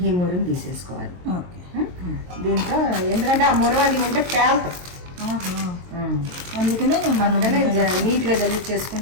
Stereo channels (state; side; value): late; left; 22 ms